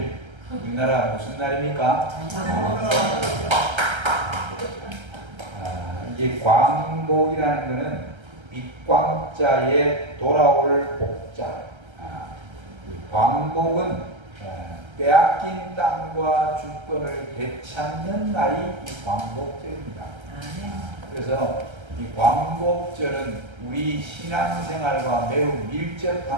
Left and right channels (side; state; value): left; late; 1.3 ms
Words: 우리나라 무슨 날입니까? 이게 광복이라는 것은 밑광자에 돌아올 복자. 광복은 빼앗긴 땅과 주권을 되찾는 날이 이 광복절입니다. 그래서 이 광복절은 우리 신앙생활과 매우